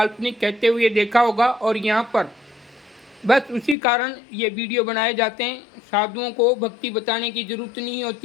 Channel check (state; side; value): drops out; right; at 3.8 s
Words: कहते हुए देखा होगा, और यहाँ पर बस उसी कारण ये वीडियो बनाए जाते हैं। साधुओं को भक्ति बताने की जरूरत नहीं